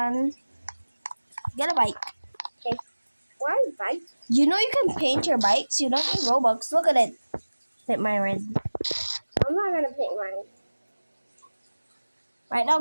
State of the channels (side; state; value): both; inverted; correlation -1.00